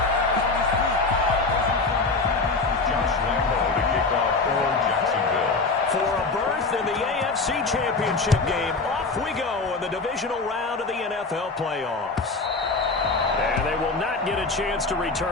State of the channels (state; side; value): quieter; right; 3.8 dB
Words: Josh Lambo to kick off for Jacksonville. For a berth in the AFC Championship game, off we go in the divisional round of the NFL playoffs. And they will not get a chance to